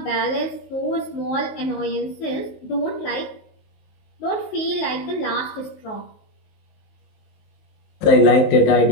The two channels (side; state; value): right; late; 19 ms